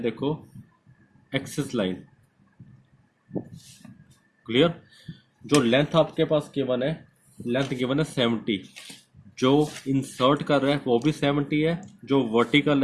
एक्सिस लाइन, क्लियर। जो लेंथ आपके पास गिवन है, लेंथ गिवन है 70, जो इंसर्ट कर रहा है वो भी 70 है, जो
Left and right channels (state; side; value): identical; both; correlation 1.00